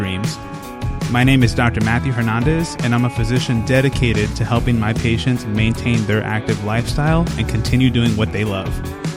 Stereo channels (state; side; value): identical; both; correlation 1.00